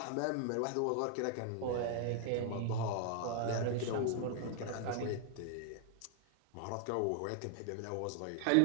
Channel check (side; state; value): both; different; correlation 0.00